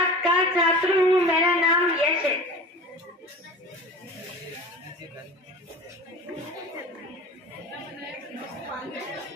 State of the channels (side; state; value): both; normal; correlation 0.36